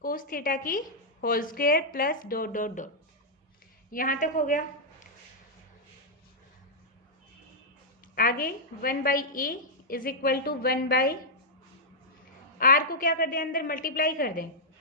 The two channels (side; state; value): both; normal; correlation -0.07